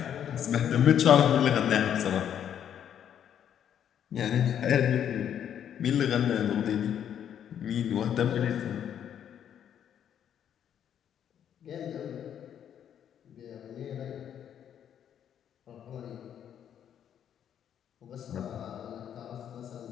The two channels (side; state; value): right; quieter; 9.4 dB